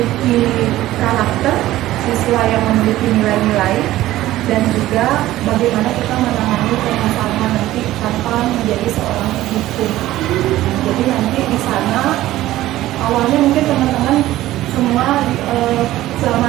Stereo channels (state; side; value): quieter; left; 15.3 dB